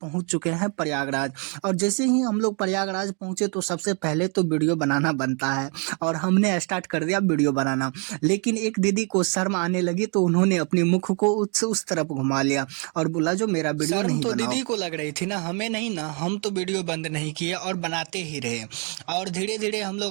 चुके हैं प्रयागराज। और जैसे ही हम लोग प्रयागराज पहुंचे तो सबसे पहले तो वीडियो बनाना बनता है, और हमने स्टार्ट कर दिया वीडियो बनाना। लेकिन एक दीदी को शर्म आने लगी तो उन्होंने अपने मुख को उस तरफ घुमा लिया और बोला जो मेरा वीडियो शर्म नहीं तो बनाओ। दीदी को लग रही थी ना, हमें नहीं ना। हम तो वीडियो बंद नहीं किए और बनाते ही रहे, और धीरे धीरे हम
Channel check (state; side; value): quieter; left; 37.3 dB